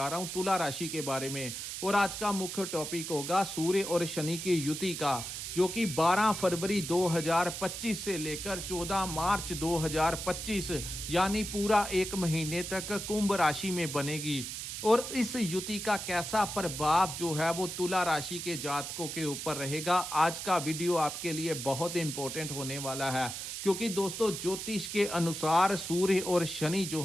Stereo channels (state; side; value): noise; right; hiss, 6 dB below the sound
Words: रहा हूं तुला राशि के बारे में और आज का मुख्य टॉपिक होगा सूर्य और शनि की युति का, जो कि 12 फरवरी 2025 से लेकर 14 मार्च 2025 यानी पूरा एक महीने तक कुंभ राशि में बनेगी। और इस युति का कैसा प्रभाव जो है वो तुला राशि के जातकों के ऊपर रहेगा। आज का वीडियो आपके लिए बहुत इंपॉर्टेंट होने वाला है, क्योंकि दोस्तों ज्योतिष के अनुसार सूर्य और शनि जो